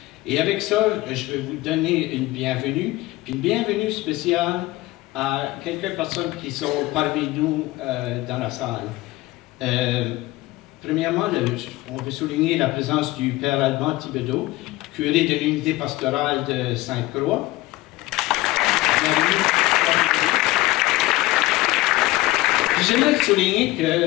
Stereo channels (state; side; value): quieter; right; 18.6 dB